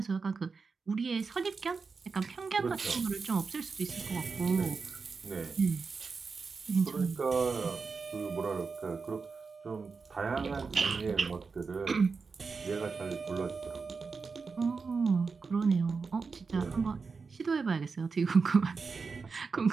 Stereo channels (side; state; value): left; quieter; 4.8 dB